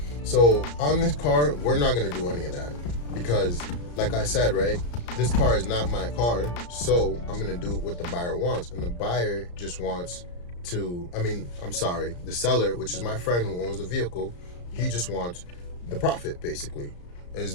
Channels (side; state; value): right; late; 34 ms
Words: So on this car, we're not going to do any of that, because like I said, right, this car is not my car, so I'm going to do what the buyer wants. And the buyer just wants the seller, which is my friend who owns the vehicle, he just wants the profit, basically,